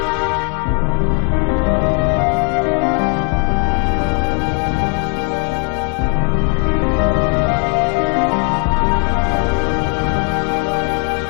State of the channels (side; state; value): right; quieter; 33.9 dB